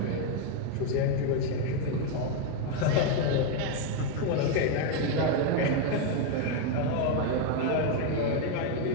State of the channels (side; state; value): both; different; correlation 0.01